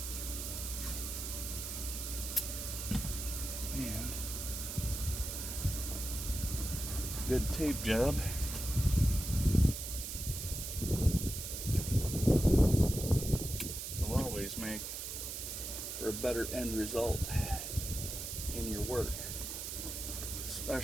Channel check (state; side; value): noise; right; hiss, 5 dB below the sound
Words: And good tape job. Will always make for a better end result in your work,